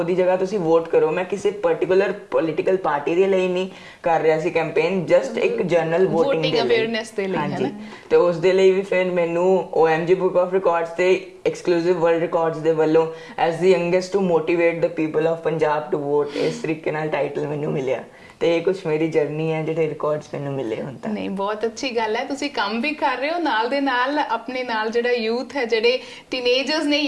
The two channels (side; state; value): both; identical; correlation 1.00